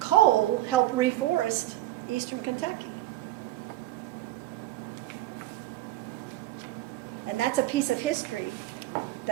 helped reforest eastern Kentucky. And that's a piece of history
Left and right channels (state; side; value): quieter; left; 16.0 dB